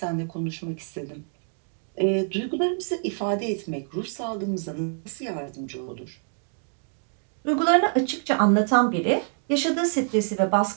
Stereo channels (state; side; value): silent; left; 56 dB below the other